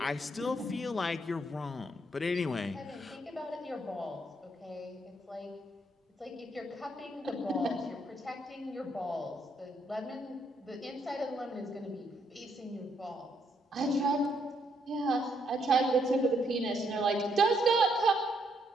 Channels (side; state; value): both; normal; correlation 0.73